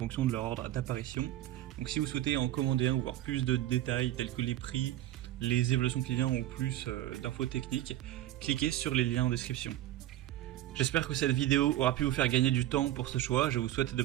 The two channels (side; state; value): left; quieter; 13.8 dB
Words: de leur ordre d'apparition. Donc si vous souhaitez en commander un ou voir plus de détails tels que les prix, les évaluations clients ou plus d'infos techniques, cliquez sur les liens en description. J'espère que cette vidéo aura pu vous faire gagner du temps pour ce choix. Je vous souhaite de